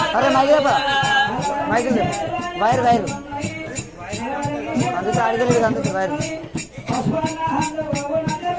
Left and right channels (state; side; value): identical; both; correlation 1.00